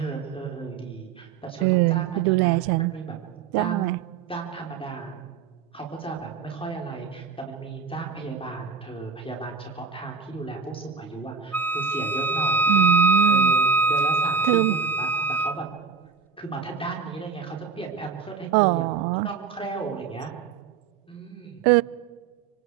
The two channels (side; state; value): left; quieter; 6.0 dB